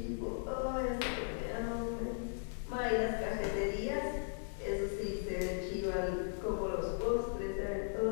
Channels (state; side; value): silent; right; digital silence